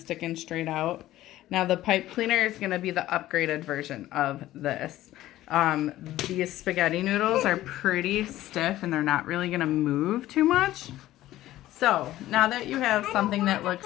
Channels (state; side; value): quieter; right; 14.9 dB